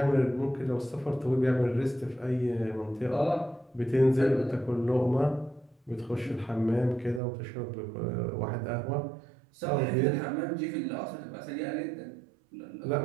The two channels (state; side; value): drops out; left; at 7.2 s